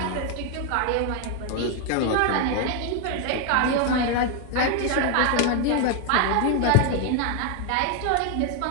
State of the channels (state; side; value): different; both; correlation 0.00